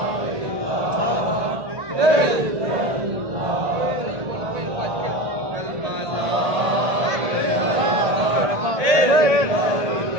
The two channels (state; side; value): late; left; 1.8 ms